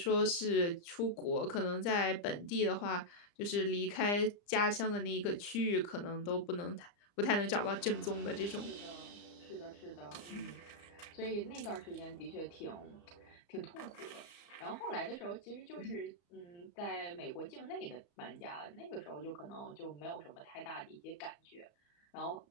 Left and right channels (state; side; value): late; right; 34 ms